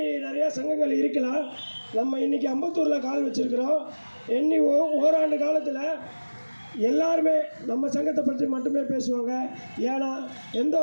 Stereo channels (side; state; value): both; inverted; correlation -1.00